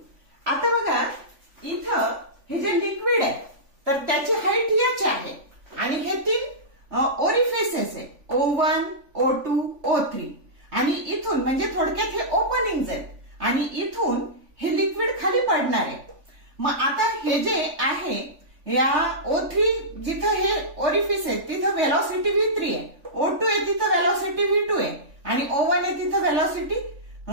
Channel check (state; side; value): late; left; 3.5 ms